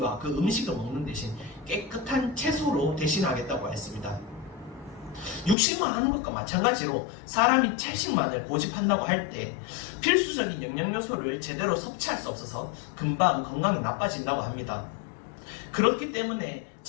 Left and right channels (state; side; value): drops out; right; at 5.6 s